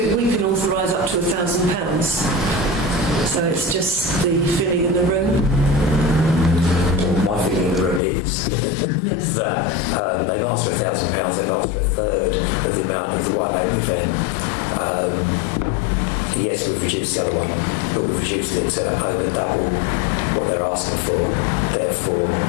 we can authorise up to £1,000. So it's just the filling in the room. My feeling in the room is Yes. that they've asked for £1,000, they've asked for a third of the amount of the white label event. Yes, we've reduced the other one, but we've reduced it to over double what they're asking for. Therefore,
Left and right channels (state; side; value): drops out; right; at 8.0 s